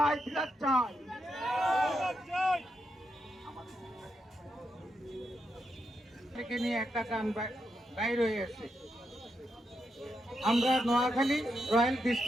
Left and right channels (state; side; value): normal; both; correlation 0.83